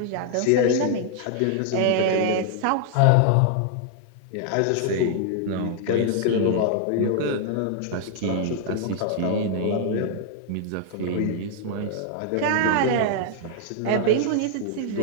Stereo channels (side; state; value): both; different; correlation 0.00